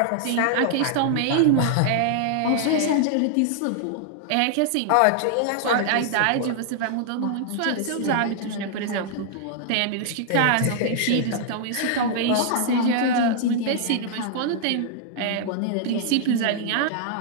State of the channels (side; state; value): both; different; correlation -0.01